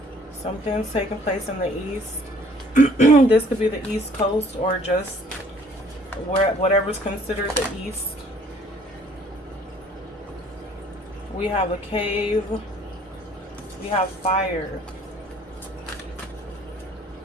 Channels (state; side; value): normal; both; correlation 0.57